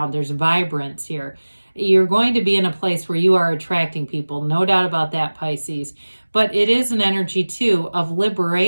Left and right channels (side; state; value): both; inverted; correlation -1.00